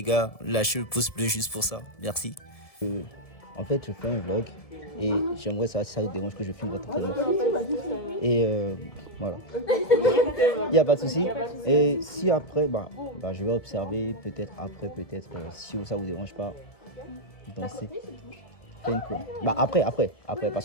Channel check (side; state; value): right; late; 1.7 ms